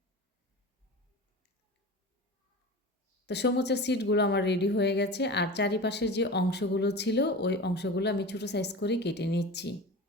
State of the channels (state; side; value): normal; both; correlation 0.32